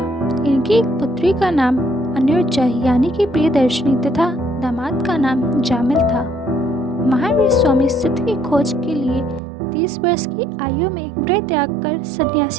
इनकी एक पुत्री का नाम अनिरुद्धा यानी कि प्रियदर्शनी तथा दामाद का नाम जामिल था। महावीर स्वामी सत्य की खोज के लिए 30 वर्ष की आयु में गृह त्याग कर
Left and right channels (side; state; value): left; drops out; at 9.4 s